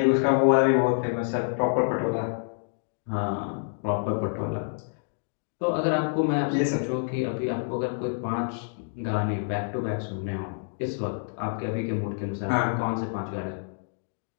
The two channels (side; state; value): right; silent; digital silence